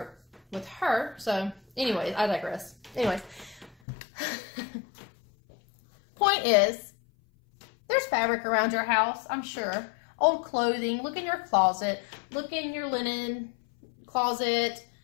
it with her. So anyways, I digress. Anyways, point is, there's fabric around your house, I'm sure. Old clothing. Look in your closet. Look in your linen closet.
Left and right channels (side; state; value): right; drops out; at 3.8 s